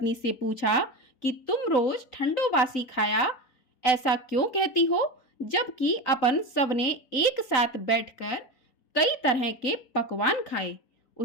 से पूछा कि तुम रोज ठंडो बासी खाया ऐसा क्यों कहती हो, जबकि अपन सबने एक साथ बैठकर कई तरह के पकवान खाए।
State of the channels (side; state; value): right; late; 3.9 ms